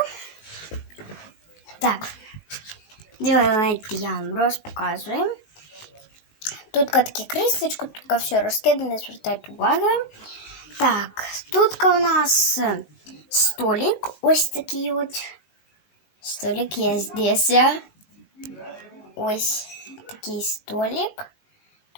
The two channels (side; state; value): right; late; 19 ms